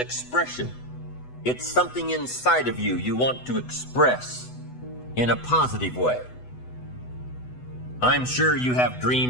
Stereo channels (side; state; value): right; late; 8.0 ms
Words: It's something inside of you want to express in a positive way. I'm sure you have